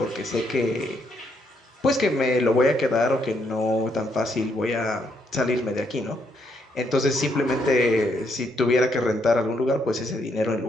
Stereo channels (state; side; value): normal; both; correlation 0.74